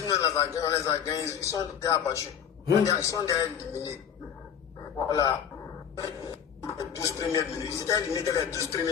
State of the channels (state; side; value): quieter; right; 8.4 dB